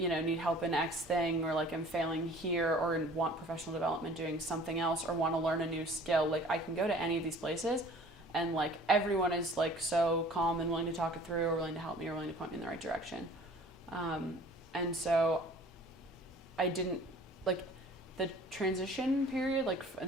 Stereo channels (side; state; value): both; normal; correlation 0.49